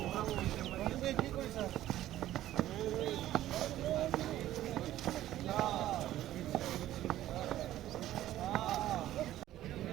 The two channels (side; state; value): left; quieter; 13.7 dB